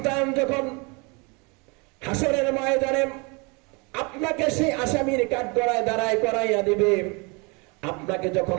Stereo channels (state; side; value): quieter; left; 30.0 dB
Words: যখন হাসরের ময়দানে আপনাকে সেই আসামির কাঠগড়ায় দাঁড়ায় করাইয়া দিবে, আপনাকে যখন